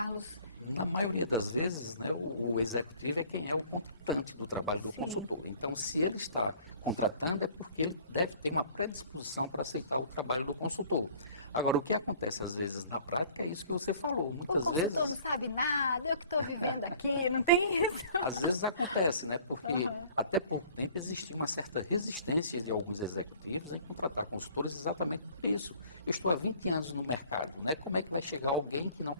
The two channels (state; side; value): inverted; both; correlation -0.54